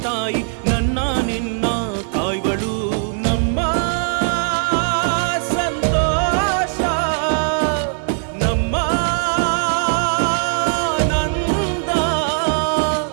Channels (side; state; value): left; silent; digital silence